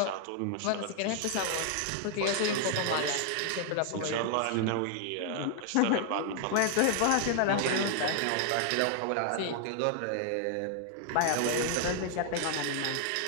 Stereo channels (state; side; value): different; both; correlation 0.00